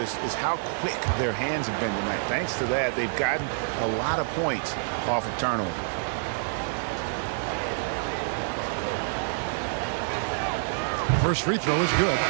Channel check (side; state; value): left; silent; digital silence